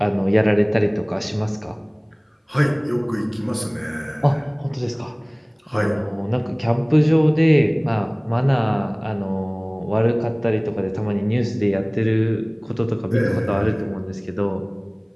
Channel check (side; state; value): both; identical; correlation 1.00